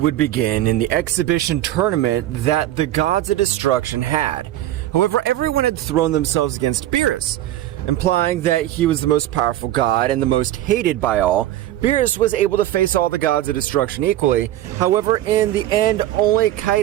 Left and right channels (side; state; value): left; quieter; 13.7 dB